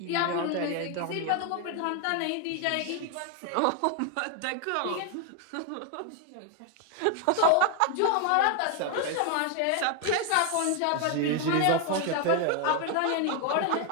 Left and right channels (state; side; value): different; both; correlation 0.01